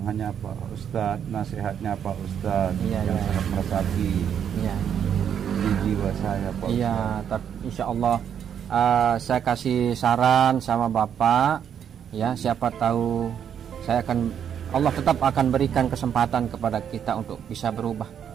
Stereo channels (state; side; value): quieter; left; 8.6 dB